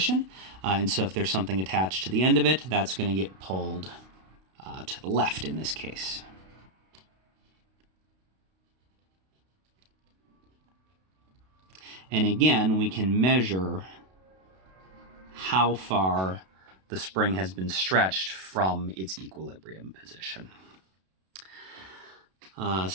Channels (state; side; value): late; left; 32 ms